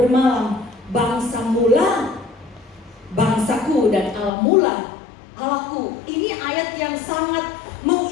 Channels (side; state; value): right; drops out; at 4.3 s